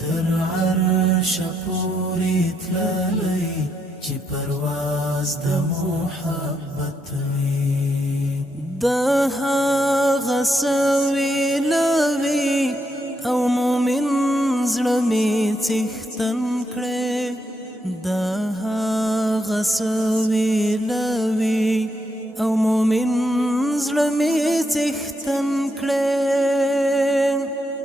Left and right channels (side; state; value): both; normal; correlation 0.79